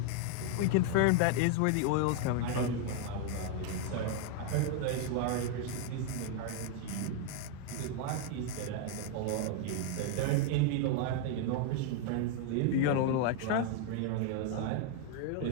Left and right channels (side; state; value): both; different; correlation 0.00